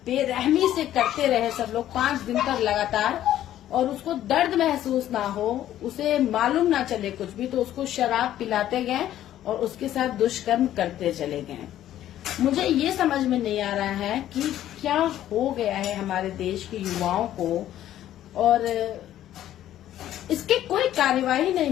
बेरहमी से करते रहे सब लोग 5 दिन तक लगातार। और उसको दर्द महसूस ना हो, उसे मालूम ना चले कुछ भी, तो उसको शराब पिलाते गए और उसके साथ दुष्कर्म करते चले गए। मुझे ये समझ में नहीं आ रहा है कि क्या हो गया है हमारे देश के युवाओं को, और इसकी कोई कार्यवाही नहीं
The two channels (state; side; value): quieter; right; 12.4 dB